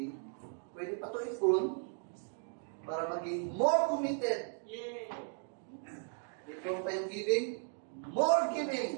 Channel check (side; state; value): left; silent; 54 dB below the other